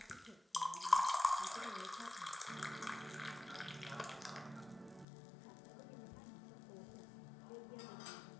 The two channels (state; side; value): drops out; right; at 5.1 s